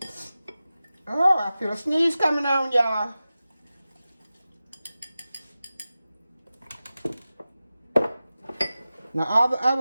Oh, I feel a sneeze coming on, y'all. Now, all the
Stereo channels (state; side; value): inverted; both; correlation -0.95